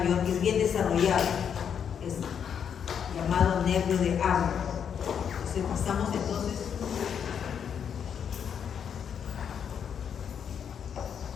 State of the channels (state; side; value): quieter; right; 7.8 dB